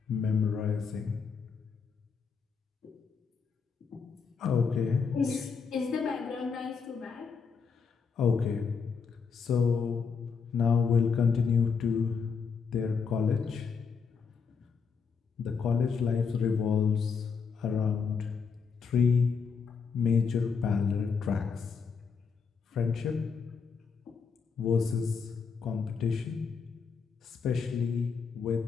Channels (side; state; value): right; quieter; 5.7 dB